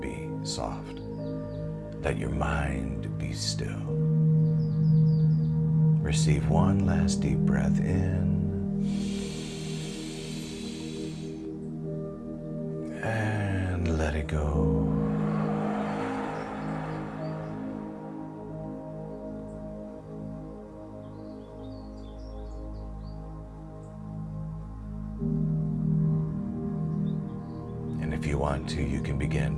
be soft. Let your mind be still. Receive one last deep breath in. And let it go. And if you want to, you can begin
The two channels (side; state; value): both; identical; correlation 1.00